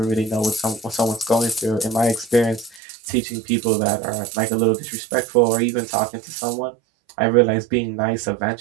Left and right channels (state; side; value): drops out; left; at 2.8 s